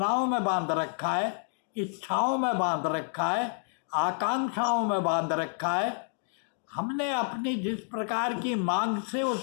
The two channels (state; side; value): silent; right; 58 dB below the other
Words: में बांध रखा है, इच्छाओं में बांध रखा है, आकांक्षाओं में बांध रखा है। हमने अपनी जिस प्रकार की मांग से